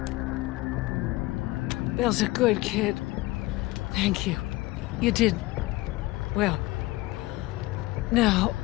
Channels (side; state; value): right; quieter; 19.8 dB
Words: Bill's a good kid. Thank you. You did... well. Now...